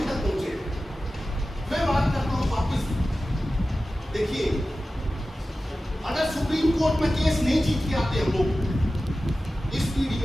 तक पहुंचे। मैं बात करता हूँ वापिस, देखिए अगर सुप्रीम कोर्ट में केस नहीं जीत के आते हम लोग, इस पीढ़ी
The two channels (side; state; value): both; normal; correlation 0.95